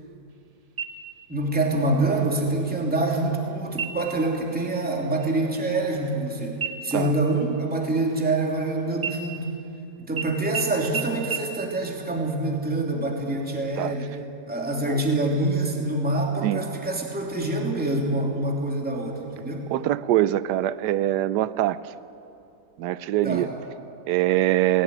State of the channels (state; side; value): quieter; left; 4.0 dB